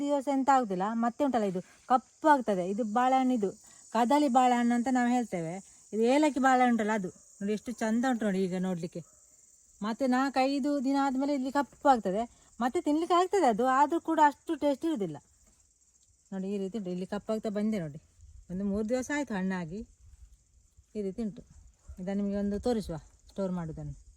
ದಿವಸ ಎಂತ ಆಗುದಿಲ್ಲ, ಮತ್ತೆ ಉಂಟಲ್ಲ ಇದು ಕಪ್ಪು ಆಗ್ತದೆ. ಇದು ಬಾಳೆಹಣ್ಣು, ಇದು ಕದಳಿ ಬಾಳೆಹಣ್ಣು ಅಂತ ನಾವು ಹೇಳ್ತೇವೆ. ಇದು ಏಲಕ್ಕಿ ಬಾಳೆಹಣ್ಣು ಉಂಟಲ್ಲ ಅದು ನೋಡಿ ಎಷ್ಟು ಚಂದ ಉಂಟು ನೋಡಿ ಈಗ ನೋಡಲಿಕ್ಕೆ. ಮತ್ತೆ 4-5 ದಿನ ಆದಮೇಲೆ ಇಲ್ಲಿ ಕಪ್ಪು ಆಗ್ತದೆ, ಮತ್ತೆ ತಿನ್ಲಿಕ್ಕೆ ಆಗ್ತದೆ ಅದು, ಆದರೂ ಕೂಡ ಅಷ್ಟು ಟೇಸ್ಟ್ ಇರೋದಿಲ್ಲ. ನೋಡಿ ಈ ರೀತಿ ಉಂಟು, ಇಲ್ಲಿ ಕಪ್ಪಾಗ್ತಾ ಬಂದೆ ನೋಡಿ. ಒಂದು 3 ದಿವಸ ಆಯಿತು ಹಣ್ಣಾಗಿ. ಈ ರೀತಿ ಉಂಟು. ಇದನ್ನು ನಿಮಗೆ ಒಂದು ತೋರಿಸುವ ಸ್ಟೋರ್ ಮಾಡೋದನ್ನು.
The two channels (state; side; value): identical; both; correlation 1.00